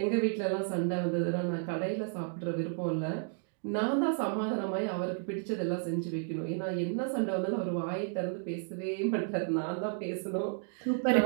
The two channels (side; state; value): left; silent; 56 dB below the other